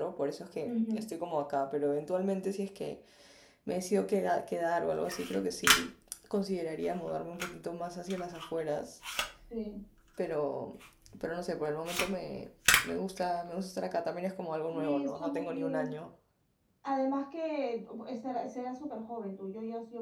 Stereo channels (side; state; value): both; identical; correlation 1.00